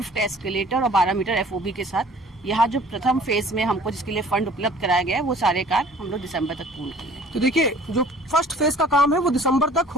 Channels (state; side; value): normal; both; correlation 0.50